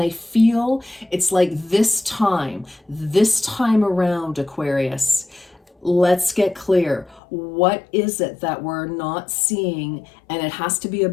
feel it's like this time around, Aquarius, let's get clear. What is it that we're not seeing? And it has to be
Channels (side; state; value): right; drops out; at 7.2 s